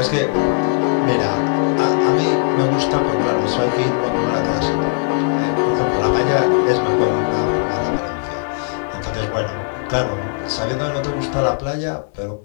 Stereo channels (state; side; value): silent; right; digital silence